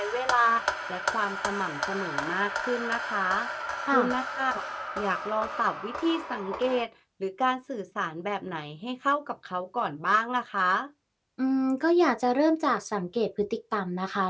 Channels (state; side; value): identical; both; correlation 1.00